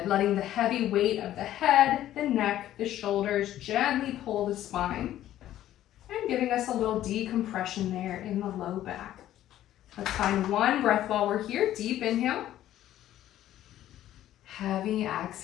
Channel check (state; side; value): quieter; right; 12.8 dB